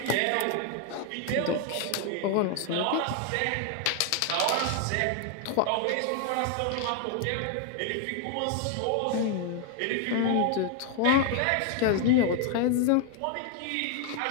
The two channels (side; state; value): both; different; correlation 0.00